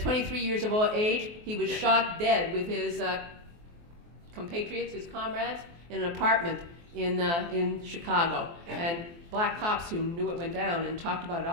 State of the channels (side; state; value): left; late; 23 ms